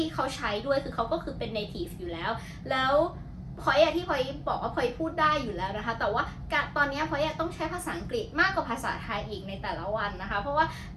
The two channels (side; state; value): both; identical; correlation 1.00